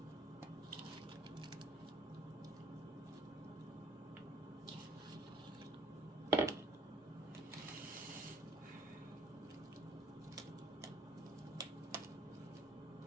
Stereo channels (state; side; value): normal; both; correlation 0.56